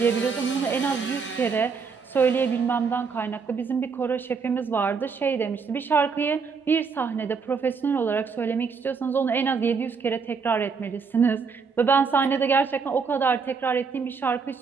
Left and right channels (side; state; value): left; quieter; 5.3 dB